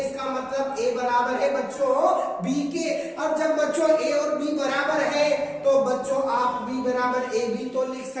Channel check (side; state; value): both; identical; correlation 1.00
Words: इसका मतलब ए बराबर है बच्चों बी के। अब जब बच्चों ए और बी बराबर है, तो बच्चों आप बी बराबर ए बी तो लिख